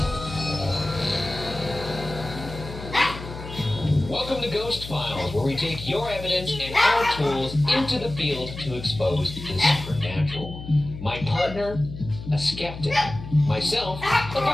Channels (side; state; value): left; noise; hum, 11 dB below the sound